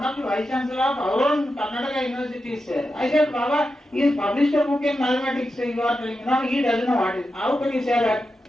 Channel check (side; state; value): both; normal; correlation 0.89